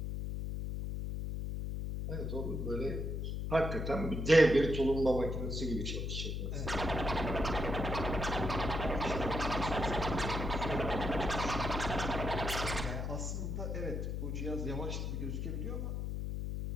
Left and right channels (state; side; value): noise; left; hum, 2 dB below the sound